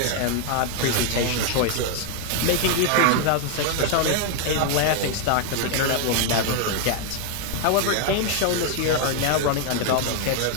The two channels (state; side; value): different; both; correlation 0.00